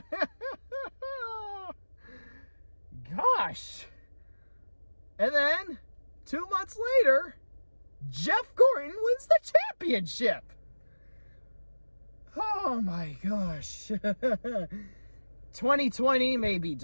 Gosh. And then, 2 months later, Jeff Gordon wins the championship. Oh my gosh. 2020 may be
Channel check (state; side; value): inverted; both; correlation -1.00